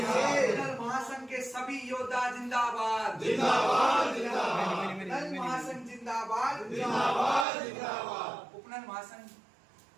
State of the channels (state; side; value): drops out; left; at 7.5 s